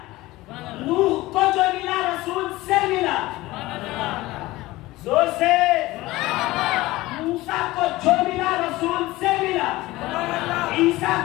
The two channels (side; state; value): right; quieter; 18.8 dB